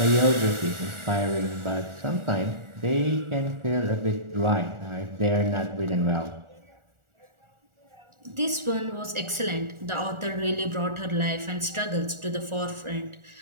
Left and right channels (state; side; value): late; left; 1.4 ms